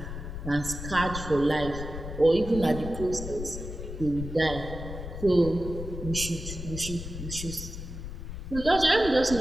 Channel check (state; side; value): noise; left; rumble, 8 dB below the sound